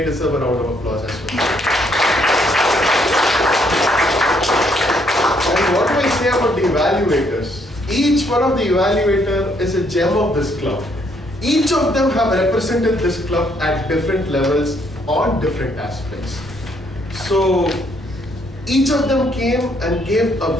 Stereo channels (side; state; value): both; normal; correlation 0.70